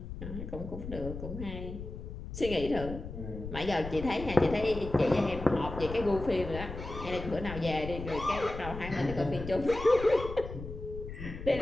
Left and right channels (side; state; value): left; noise; rumble, 9 dB below the sound